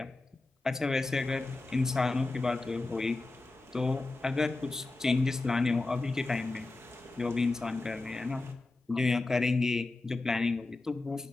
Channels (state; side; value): quieter; right; 3.2 dB